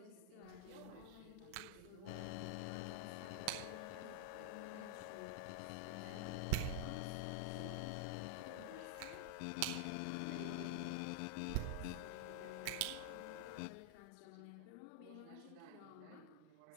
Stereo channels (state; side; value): different; both; correlation -0.01